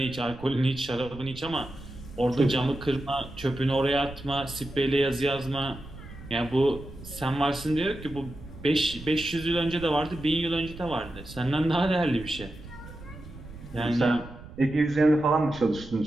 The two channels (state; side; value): noise; right; rumble, 15 dB below the sound